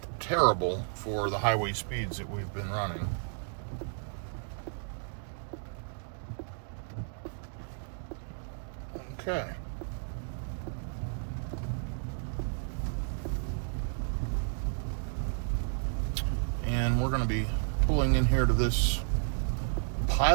terrible for the highway speeds that we've been running. Okay. And we're going to be pulling in here to this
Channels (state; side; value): silent; left; digital silence